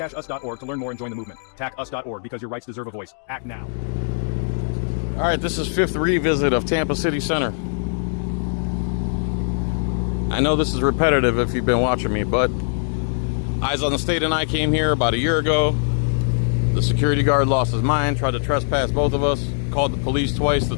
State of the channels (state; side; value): silent; right; digital silence